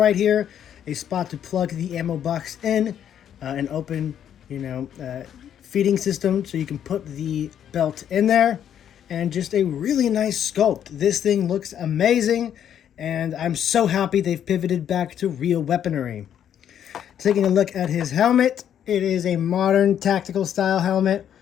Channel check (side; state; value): right; quieter; 9.6 dB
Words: here, a spot to plug the ammo box in, an open, feeding system so you can put the belt in there, and just a really nice sculpt. This thing looks amazing, and I'm so happy they've pivoted back to real weaponry. Taking a look at his helmet, it is a modern tactical style helmet.